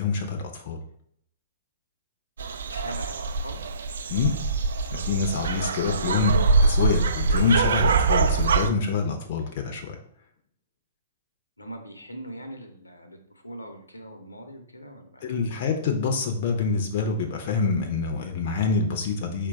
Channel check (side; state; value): both; inverted; correlation -0.47